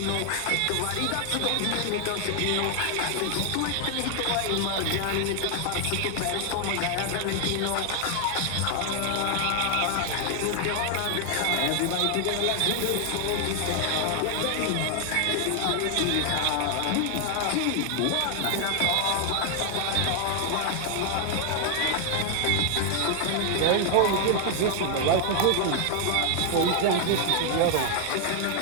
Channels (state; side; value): different; both; correlation 0.00